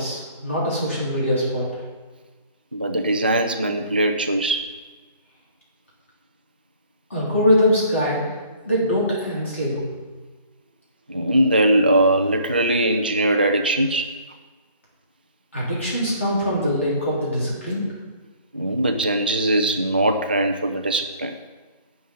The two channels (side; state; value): both; inverted; correlation -0.57